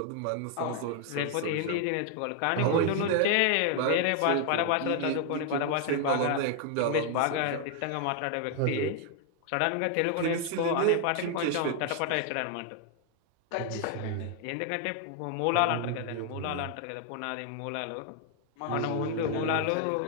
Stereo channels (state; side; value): different; both; correlation 0.00